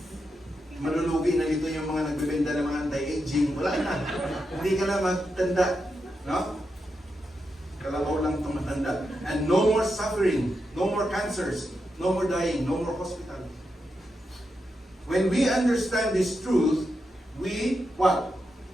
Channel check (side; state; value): both; normal; correlation 0.86